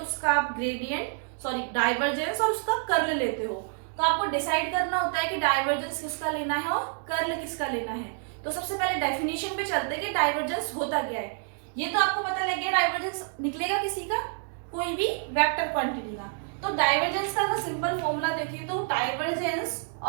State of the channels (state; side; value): silent; left; 59 dB below the other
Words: उसका आप डाइवर्जेंस और उसका कर्ल लेते हो। तो आपको डिसाइड करना होता है कि डाइवर्जेंस किसका लेना है और कर्ल किसका लेना है। तो सबसे पहले डेफिनेशन पे चलते हैं कि डाइवर्जेंस होता क्या है। ये तो आपको पता लग गया डाइवर्जेंस निकलेगा किसी का, कोई भी वेक्टर क्वांटिटी का। तो डाइवर्जेंस का अगर सिंपल फॉर्मूला देखिए तो डाइवर्जेंस